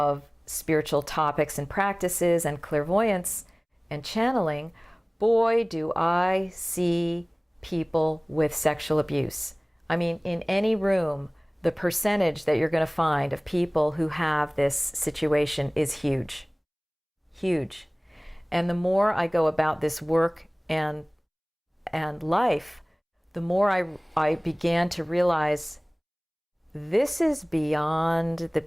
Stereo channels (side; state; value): both; identical; correlation 1.00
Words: spiritual topics and practices and clairvoyance and channeling, boy, do I see people with sexual abuse. I mean, in any room, the percentage that you're going to find of people who have this situation is huge. Huge. And the more I go about this work and life, the more I began to realize this is beyond the